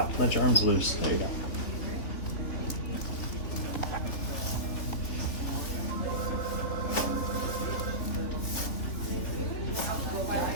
Let your arms loose. There you go.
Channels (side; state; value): right; late; 3.1 ms